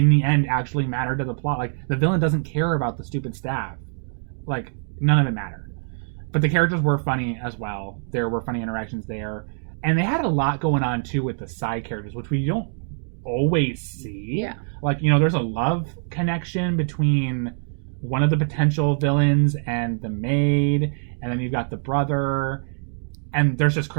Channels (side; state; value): left; silent; 57 dB below the other